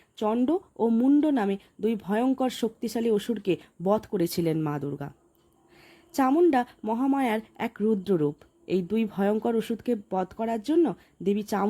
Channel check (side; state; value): both; identical; correlation 1.00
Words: চণ্ড ও মুণ্ড নামে দুই ভয়ঙ্কর শক্তিশালী অসুরকে বধ করেছিলেন মা দুর্গা। চামুণ্ডা মহামায়ার এক রুদ্ররূপ। এই দুই ভয়ঙ্কর অসুরকে বধ করার জন্য দেবী